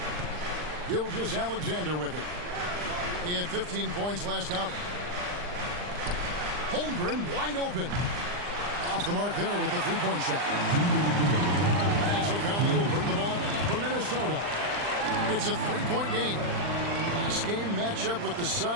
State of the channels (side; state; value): left; late; 39 ms